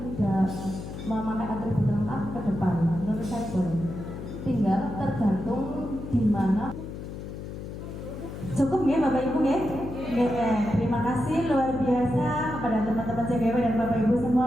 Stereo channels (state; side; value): noise; left; hum, 9 dB below the sound